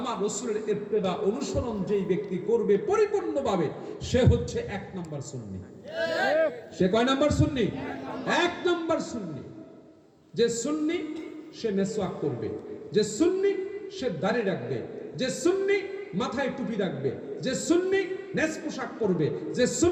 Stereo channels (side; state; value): both; identical; correlation 1.00